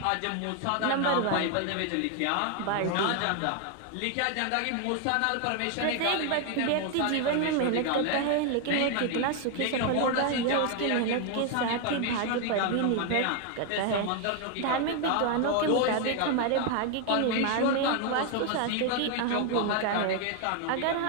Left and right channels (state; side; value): different; both; correlation 0.01